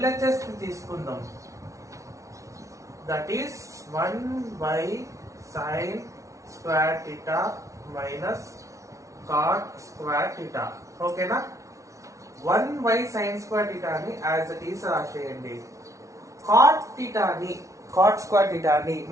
ని తీసుకుందాం. That is 1 sin square theta minus cot square theta. ఓకేనా? 1 sin square theta ని యాజ్ ఇట్ ఈస్ రాసేయండి. cot theta ని cot square theta ని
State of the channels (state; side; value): late; left; 0.15 ms